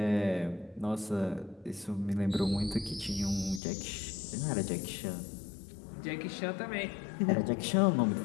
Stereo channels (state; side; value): drops out; right; at 3.6 s